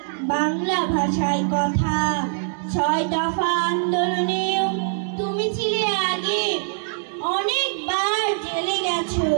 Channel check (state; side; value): silent; left; digital silence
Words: বাংলা ভাষায় কথা। ৬ দফা আন্দোলনেও তুমি ছিলে আগে, অনেকবার জেলে গেছো